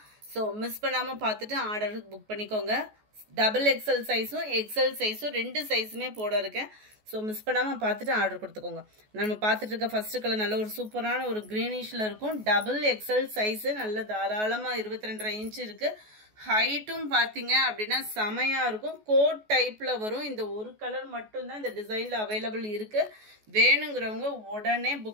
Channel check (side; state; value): left; late; 14 ms